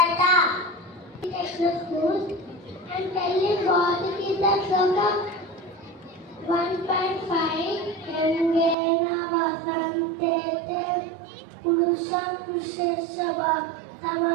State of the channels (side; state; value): left; drops out; at 8.8 s